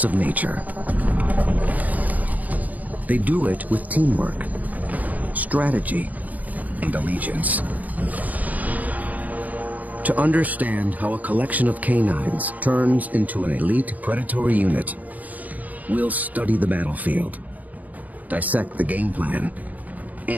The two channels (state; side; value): late; left; 0.078 ms